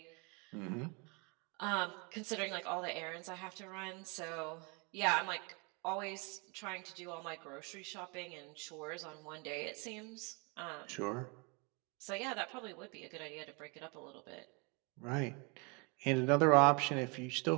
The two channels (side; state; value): left; quieter; 31.5 dB